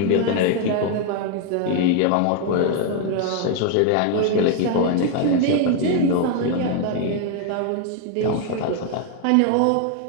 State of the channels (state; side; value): different; both; correlation 0.00